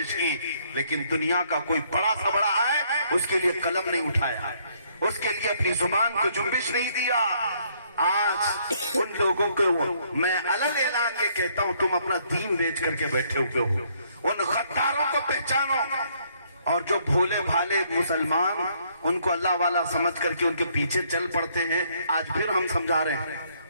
की, लेकिन दुनिया का कोई बड़ा सा बड़ा आए उसके लिए कलम नहीं उठाया, उसके लिए अपनी जुबान को जुम्बिश नहीं दिया। आज उन लोगों को मैं अलग ऐलान के कहता हूं, तुम अपना दीन बेच करके बैठे हुए हो, उन गद्दारों को पहचानो। और जो भूले भाले मुसलमान उनको अल्लाह वाला समझ करके उनके पीछे चल पड़ते हैं, आज फिर हम समझा रहे हैं,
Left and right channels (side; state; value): both; inverted; correlation -0.68